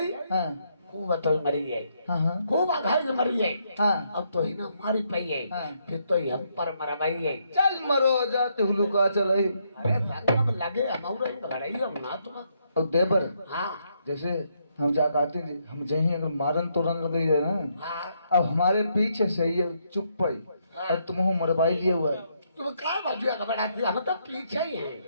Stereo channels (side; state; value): both; inverted; correlation -0.75